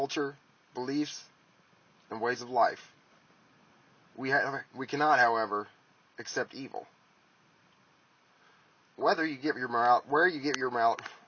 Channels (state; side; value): identical; both; correlation 1.00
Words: beliefs, and ways of life. We cannot, however, accept evil. Where you get your